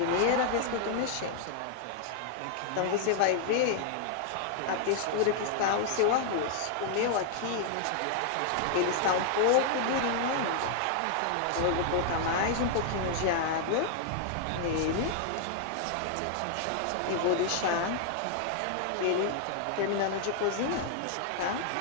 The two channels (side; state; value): both; different; correlation 0.00